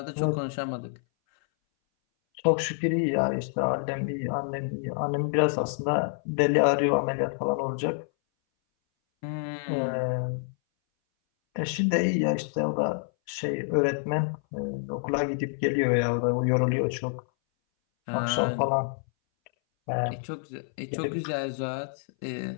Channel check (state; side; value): silent; right; 59 dB below the other